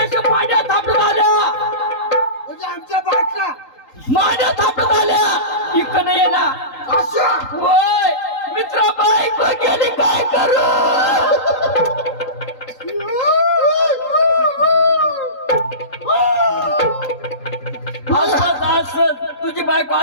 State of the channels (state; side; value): late; right; 3.8 ms